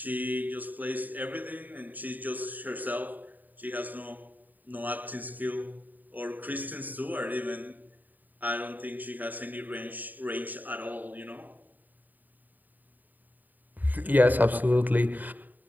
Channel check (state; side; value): late; left; 0.086 ms